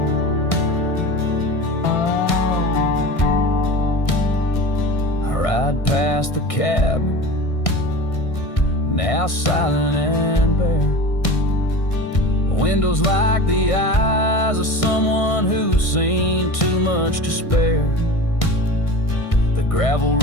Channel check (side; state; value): right; late; 1.6 ms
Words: Ride past the cabin, now silent and bare, windows like the eyes of someone who's seen too much to spare. The gravel